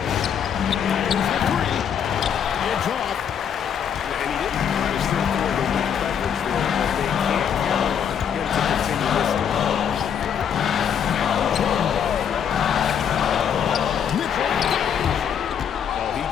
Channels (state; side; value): quieter; right; 8.2 dB